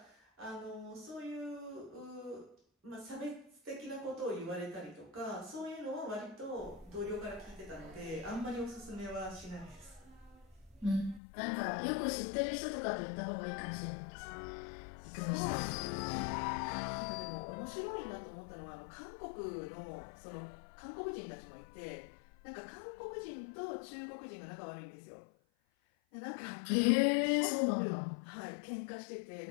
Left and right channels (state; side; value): drops out; right; at 11.2 s